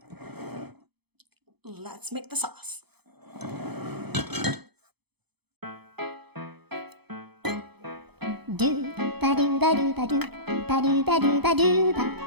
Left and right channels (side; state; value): left; late; 0.98 ms